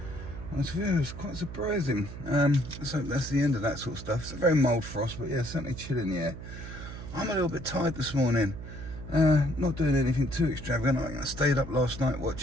It was quite surprising. So that's the end of that sort of stuff. It's a very mild frost, but yeah, certainly chill in the air. I'm a little bit tired this morning. Not doing anything too extravagant. I stayed up last night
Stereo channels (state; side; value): noise; right; hum, 11 dB below the sound